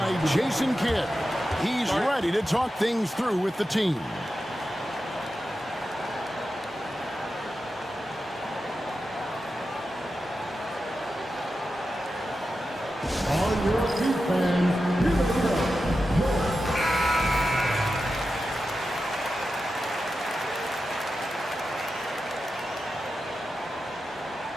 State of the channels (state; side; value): normal; both; correlation 0.91